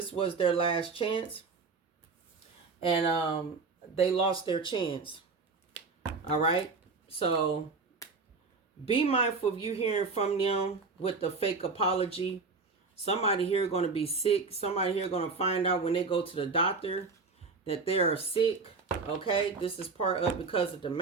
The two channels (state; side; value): quieter; left; 4.4 dB